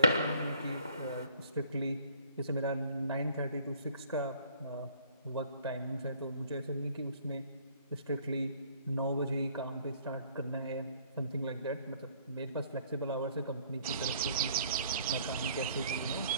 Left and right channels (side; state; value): both; inverted; correlation -0.58